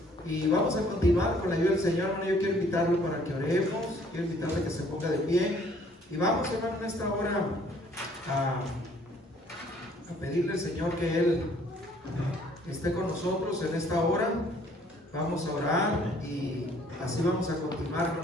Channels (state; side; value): normal; both; correlation 0.60